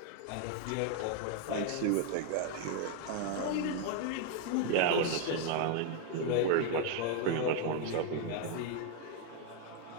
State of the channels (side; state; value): both; different; correlation 0.00